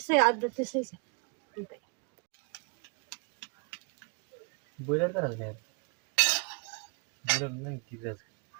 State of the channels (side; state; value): left; quieter; 33.0 dB